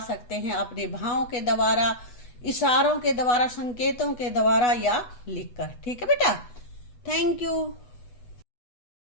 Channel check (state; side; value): late; right; 8.1 ms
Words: सकते हैं, अपने भावों के द्वारा, इशारों के द्वारा, संकेतों के द्वारा या लिखकर। ठीक है बेटा, थैंक यू।